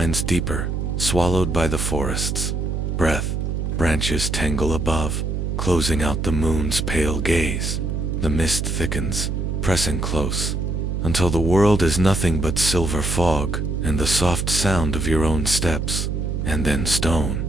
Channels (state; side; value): noise; right; hum, 1 dB below the sound